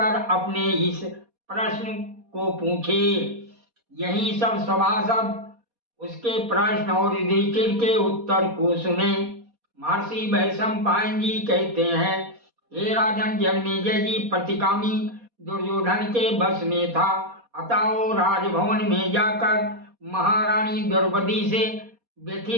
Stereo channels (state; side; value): late; left; 4.2 ms